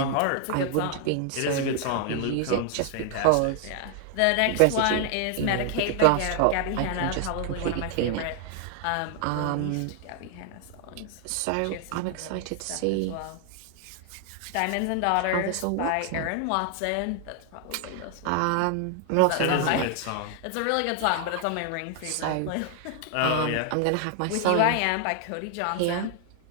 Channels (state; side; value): different; both; correlation 0.00